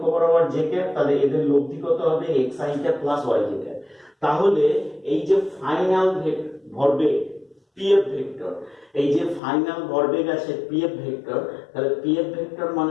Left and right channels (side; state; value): right; drops out; at 9.4 s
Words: বরাবর জে ক্যাপ, তাহলে এদের লব্ধি কত হবে x i cap plus y j cap. তাহলে এই যে ফাইনাল ভরবেগ পিএফ ভেক্টর, এই যে ফাইনাল ভরবেগ আছে পিএফ ভেক্টর, তাহলে পিএফ ভেক্টর